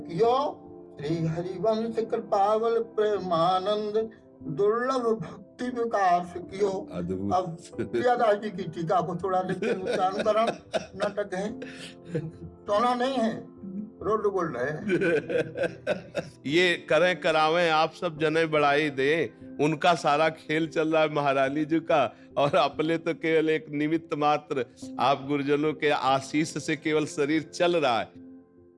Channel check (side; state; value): both; identical; correlation 1.00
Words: श्री हरिवंश कृपावल प्रेमानंद, दुर्लभ भक्ति विकास कियो। अब प्रियादास जी की टीका को थोड़ा लेकिन उच्चारण नाटक है, टोना नहीं है, रोड बोल रहे हैं। ये करें करावें आप सब जने बढ़ाई दे, उनका सारा खेल चल रहा है महारानी जी का, और अपने तो केवल एक निमित्त मात्र, आप गुरुजनों के आशीष से केवल शरीर चल रहा है।